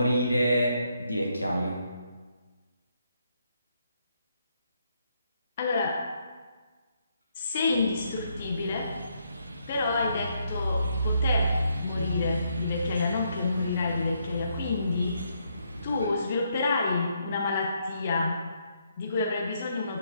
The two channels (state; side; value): inverted; both; correlation -0.75